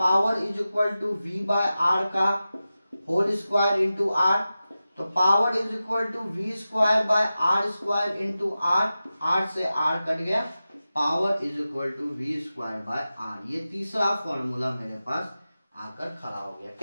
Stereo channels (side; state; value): both; inverted; correlation -0.94